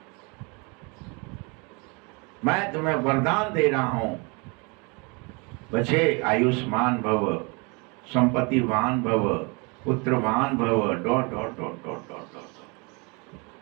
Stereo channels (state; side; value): quieter; left; 30.6 dB